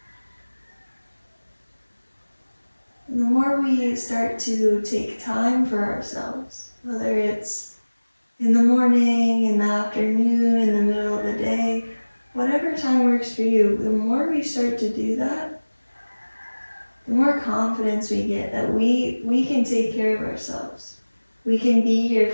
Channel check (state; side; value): inverted; both; correlation -1.00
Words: And the more we start to take time for ourselves, whether it's in the morning, in the afternoon, in the middle of the day, whatever time works for you, the more we start to do that, the more confidence we get that we can take care of ourselves. We can be here